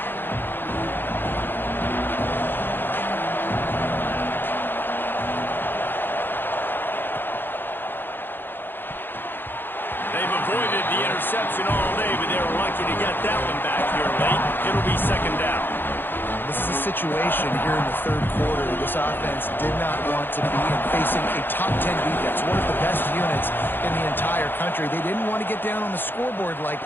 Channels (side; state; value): right; late; 0.097 ms